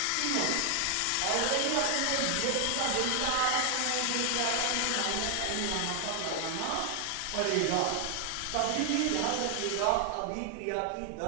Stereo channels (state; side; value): different; both; correlation 0.00